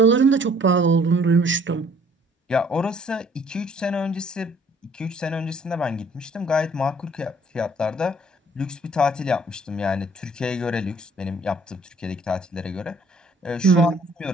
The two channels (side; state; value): both; normal; correlation 0.59